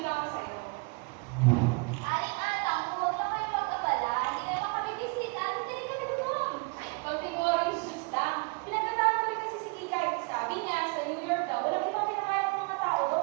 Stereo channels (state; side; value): quieter; left; 32.6 dB